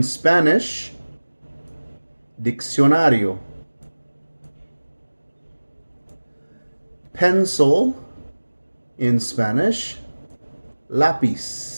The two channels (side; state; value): both; inverted; correlation -1.00